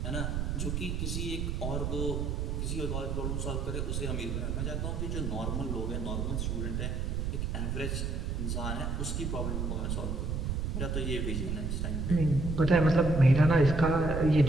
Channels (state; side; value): noise; right; rumble, 1 dB below the sound